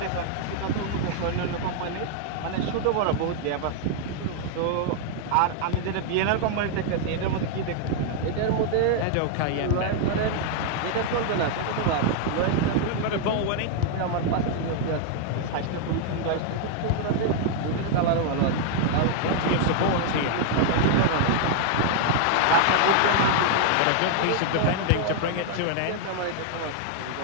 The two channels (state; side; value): different; both; correlation 0.00